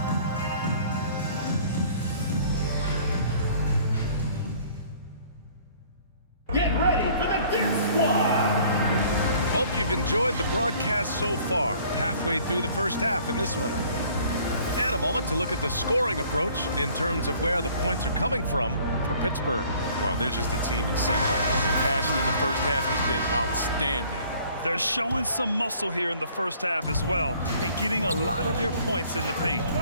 Get ready for the Dip Squad. Hope you've enjoyed the broadcast so far. Halfway through the first half in this one. And a moment to look at the scoring approach in terms of where the points are coming from for Pittsburgh. Well, they're just a team in sync right now. Their passion in the first half has been outstanding. They're showing some muscle here in the first half as well and getting a lot of their points in the paint.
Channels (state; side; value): inverted; both; correlation -0.55